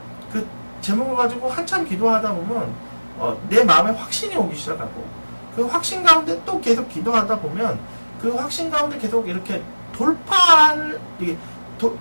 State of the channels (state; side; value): inverted; both; correlation -1.00